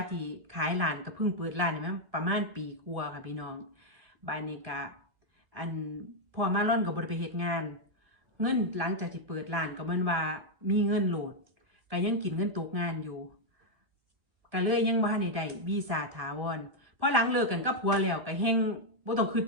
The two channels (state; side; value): late; left; 1.7 ms